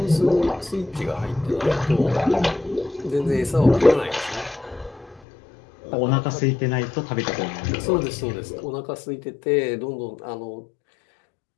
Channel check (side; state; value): right; drops out; at 5.2 s